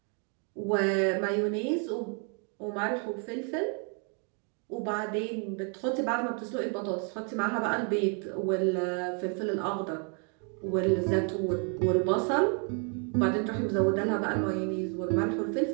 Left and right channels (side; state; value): left; quieter; 39.6 dB